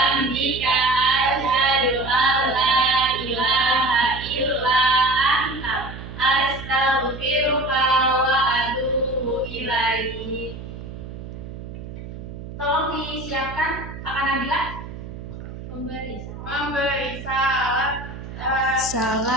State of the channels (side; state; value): right; noise; hum, 11 dB below the sound